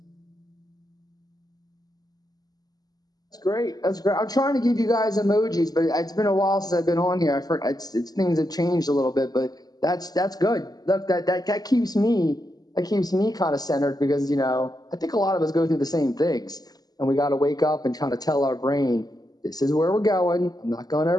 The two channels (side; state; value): right; late; 0.19 ms